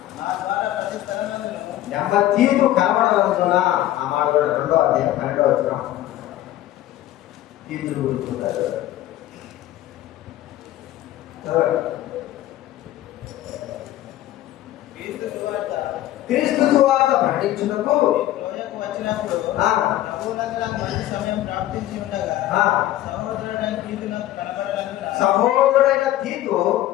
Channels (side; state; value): right; quieter; 14.1 dB